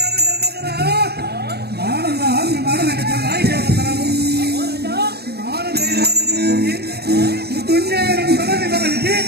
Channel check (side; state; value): left; late; 0.47 ms